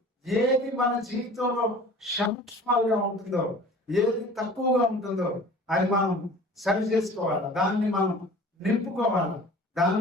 ఏది మన జీవితంలో సంక్షేమాలుగా ఉంటుందో, ఏది తక్కువగా ఉంటుందో అది మనం సరి చేసుకోవాలి. దాన్ని మనం నింపుకోవాలి,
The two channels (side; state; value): both; normal; correlation 0.44